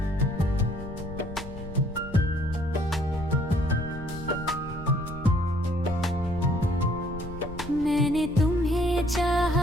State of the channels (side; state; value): left; noise; rumble, 12 dB below the sound